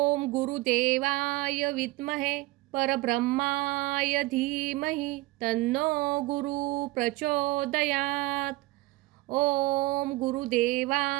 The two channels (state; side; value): quieter; left; 20.0 dB